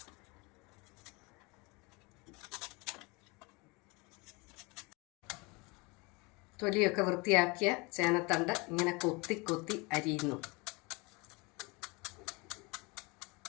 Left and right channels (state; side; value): quieter; right; 27.1 dB